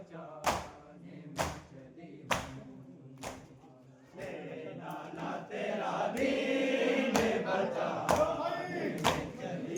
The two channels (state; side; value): identical; both; correlation 1.00